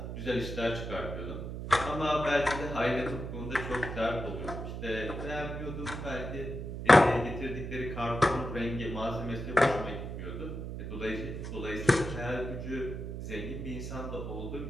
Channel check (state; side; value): noise; right; hum, 6 dB below the sound